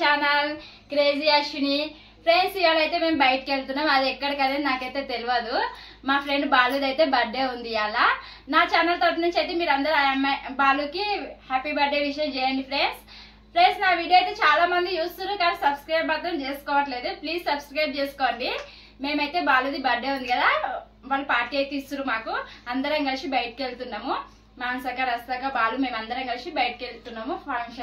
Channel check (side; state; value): both; identical; correlation 1.00